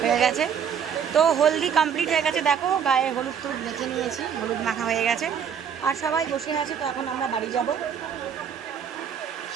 হয়ে গেছে। তো হলদি কমপ্লিট হয়ে গেছে, দেখো গায়ে হলুদ টুলুদ মেখে নিয়েছি, হলুদ মাখা হয়ে গেছে, আর সবাই বসে আছে। তো এখন আমরা বাড়ি যাব,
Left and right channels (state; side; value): quieter; left; 7.8 dB